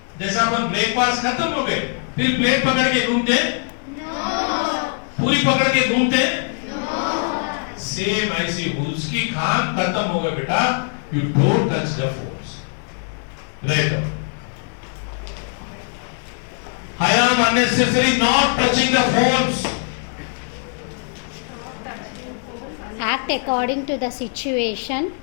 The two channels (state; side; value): silent; right; 57 dB below the other